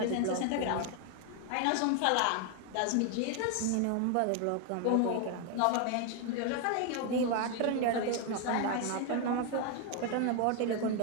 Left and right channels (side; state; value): both; different; correlation 0.01